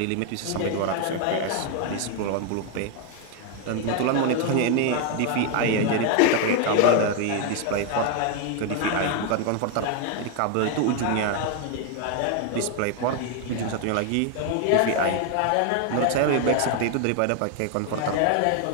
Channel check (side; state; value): both; different; correlation 0.01